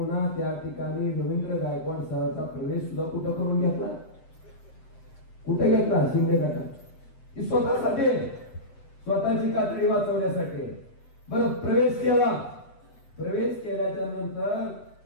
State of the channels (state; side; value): late; right; 7.8 ms